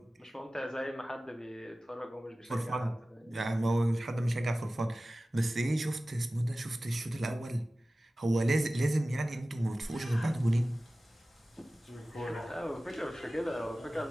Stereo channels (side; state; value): both; normal; correlation 0.97